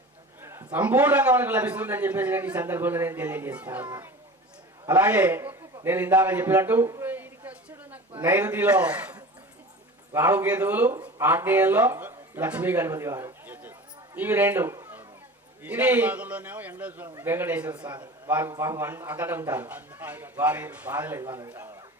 సంపూర్ణంగా మనకు లభిస్తుందని చెప్పేసి నేను ఈ సందర్భంలో నేను తెలియజేస్తా ఉన్నా. అలాగే నేను ఇందాక చెప్పినట్టు నైరుతిలో రాహుకేతువులు, ఆగ్నేయంలో లక్ష్మీ గణపతి వారు, ఇవి రెండు. ఇది వెంకటేశ్వర స్వామి వారు పాపం అక్కడ ఉంటారు, వారి బాధలేదు వాళ్ళు.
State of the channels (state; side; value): normal; both; correlation 0.36